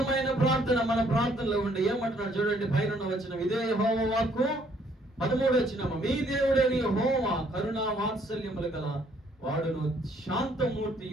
ప్రార్థన మన ప్రార్థనలో ఉండి ఏమంటున్నాడు చూడండి, పైన వచనం. ఇదే యెహోవా వాక్కు 13వ వచనం. మీ దేవుడైన యెహోవా కరుణా వాత్సల్యములు గల వాడును,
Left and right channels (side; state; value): both; normal; correlation 0.65